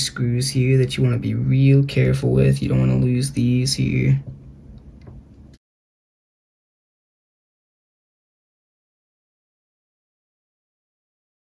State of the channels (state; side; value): identical; both; correlation 1.00